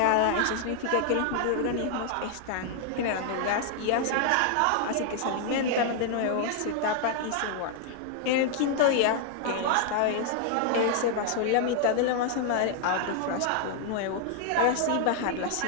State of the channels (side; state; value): both; different; correlation 0.00